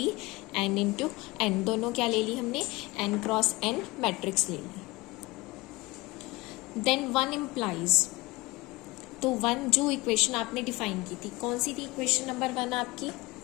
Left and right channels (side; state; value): right; quieter; 22.1 dB